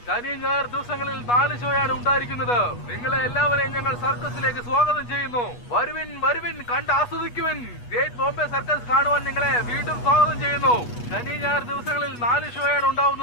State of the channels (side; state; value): right; late; 8.3 ms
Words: ശനി ഞായർ ദിവസങ്ങളിൽ 4 ഷോയാണ് ഉണ്ടായിരിക്കുന്നത്. നിങ്ങളെ എല്ലാവരെയും ഞങ്ങൾ സർക്കസിലേക്ക് സ്വാഗതം ചെയ്യുന്നു. വരുവിൻ വരുവിൻ, കണ്ട് ആസ്വദിക്കുവിൻ. ഗ്രേറ്റ് ബോംബെ സർക്കസ് കാണുവാൻ നിങ്ങളെ വീണ്ടും സ്വാഗതം ചെയ്യുന്നു. ശനി ഞായർ ദിവസങ്ങളിൽ 4 ഷോയാണ്